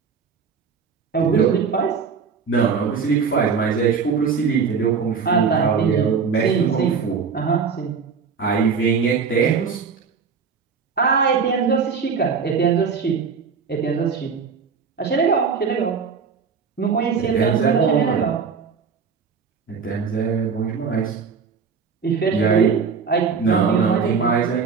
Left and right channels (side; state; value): left; quieter; 5.7 dB